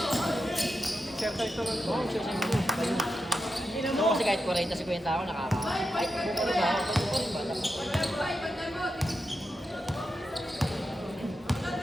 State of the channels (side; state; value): both; normal; correlation 0.88